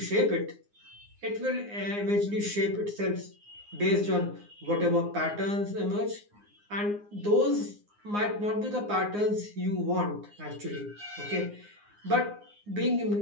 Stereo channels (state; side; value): late; left; 9.7 ms